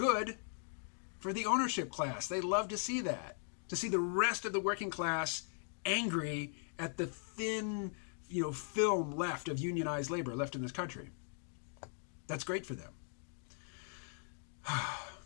for the ownership class. They love to see that. To see the rest of the working class angry at the thin, you know, film left of unionized labor left in this country. That's great for them.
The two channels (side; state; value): right; silent; 52 dB below the other